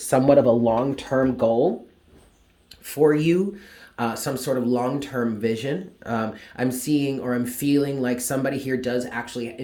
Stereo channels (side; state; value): both; identical; correlation 1.00